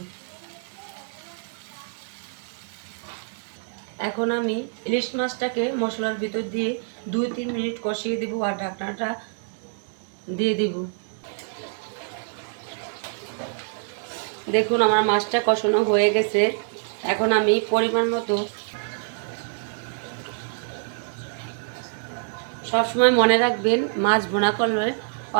এখন আমি ইলিশ মাছটাকে মশলার ভিতর দিয়ে 2-3 মিনিট কষিয়ে দিব আর ঢাকনাটা দিয়ে দিব। দেখুন আমার মাছটা কষানো হয়ে গেছে। এখন আমি পরিমাণ মতো, সবসময় মনে রাখবেন মাছ ভুনা করলে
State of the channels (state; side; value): silent; left; digital silence